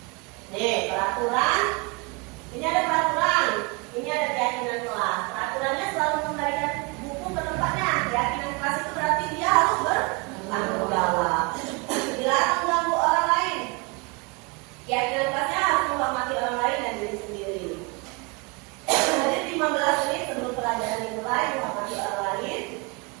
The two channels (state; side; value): quieter; left; 28.9 dB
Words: Nih, peraturan. Ini ada peraturan. Ini ada keyakinan kelas. Peraturannya selalu mengembalikan buku ke tempatnya. Keyakinan kelas itu berarti dia harus bertanggung jawab. Dilarang mengganggu orang lain. Keyakinan kelasnya harus menghormati orang lain dan diri sendiri. Jadi 15 menit sebelum pelajaran dimulai menghormati orang lain.